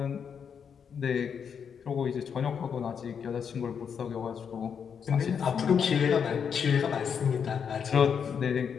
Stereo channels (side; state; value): right; quieter; 7.1 dB